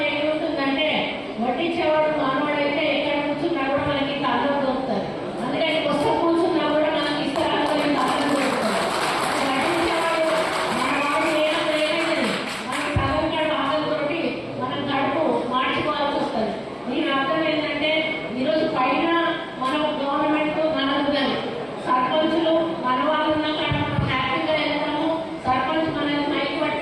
ఏముంటుందంటే వడ్డించేవాడు మానవాడైతే ఎక్కడ కూర్చున్నా కూడా మనకి కళ్ళు దొరుకుతుంది. అందుకని కొత్త కూర్చున్నా కూడా మనకి ఇస్తారాలు కళ్ళు దొరుకుతుంది. వడ్డించేవాడు మన వాడు ఏమైంది మనకి సగం ఆకలితోటి మనం కడుపు మార్చుకోవాల్సి వస్తుంది. దీని అర్థం ఏంటంటే ఈరోజు పైన మన గవర్నమెంట్ మనకు కానీ సర్పంచులు మన వాళ్ళు ఉన్నా కానీ మనం హ్యాపీగా వెళ్తాము. సర్పంచ్ మనల్ని మైక్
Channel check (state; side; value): identical; both; correlation 1.00